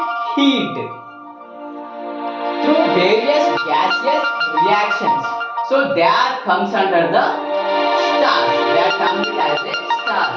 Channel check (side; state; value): both; identical; correlation 1.00